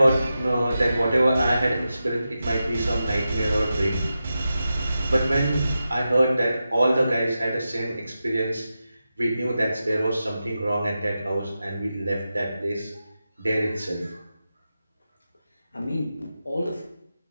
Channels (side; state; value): both; inverted; correlation -0.91